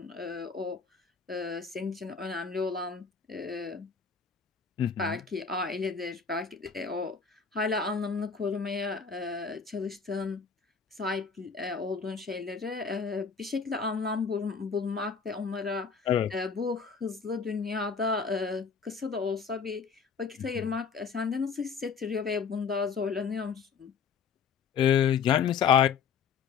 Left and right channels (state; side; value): quieter; right; 6.0 dB